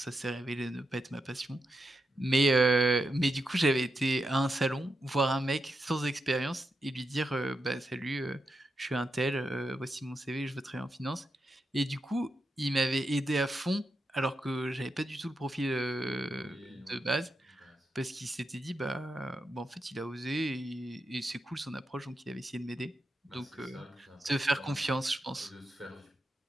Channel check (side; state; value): both; normal; correlation 0.86